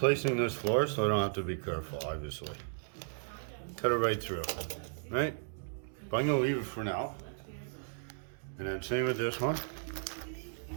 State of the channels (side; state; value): left; silent; digital silence